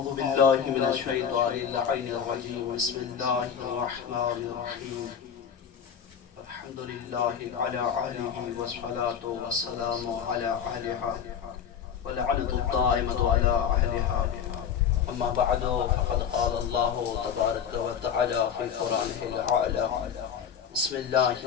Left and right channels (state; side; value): quieter; right; 7.9 dB